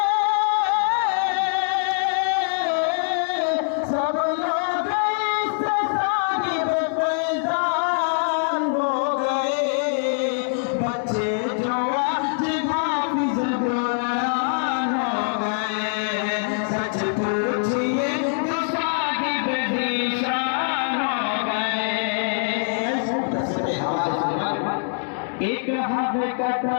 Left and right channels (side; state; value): right; silent; 59 dB below the other